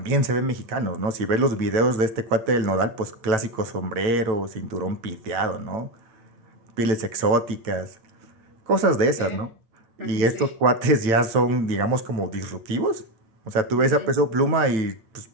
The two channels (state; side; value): late; left; 9.1 ms